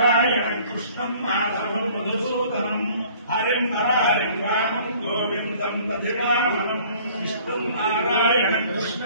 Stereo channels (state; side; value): inverted; both; correlation -0.54